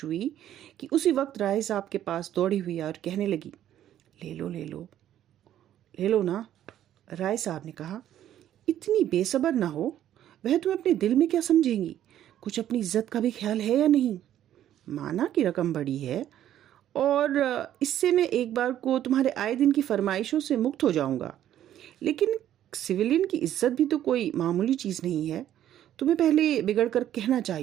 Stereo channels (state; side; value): quieter; left; 11.6 dB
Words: हुई कि उसी वक्त राय साहब के पास दौड़ी हुई और कहने लगी, ले लो ले लो ले लो ना। राय साहब ने कहा, इतनी बेसब्र ना हो। वह तुम्हें अपने दिल में क्या समझेंगी? कुछ अपनी इज्जत का भी ख्याल है या नहीं? माना कि रकम बड़ी है और इससे मैं एक बार को तुम्हारे आए दिन की फरमाइशों से मुक्त हो जाऊंगा। लेकिन सिविलियन की इज्जत भी तो कोई मामूली चीज़ नहीं है। तुम्हें पहले बिगड़ कर कहना